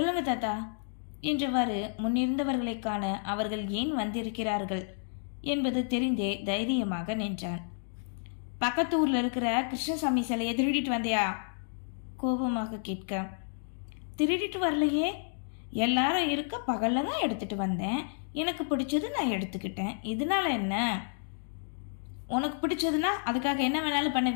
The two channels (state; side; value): silent; right; digital silence